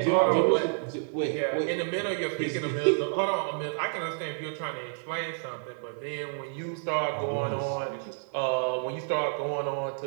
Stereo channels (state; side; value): silent; left; 58 dB below the other